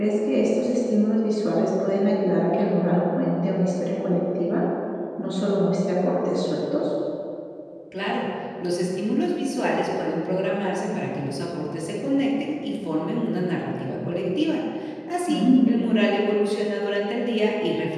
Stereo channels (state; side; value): identical; both; correlation 1.00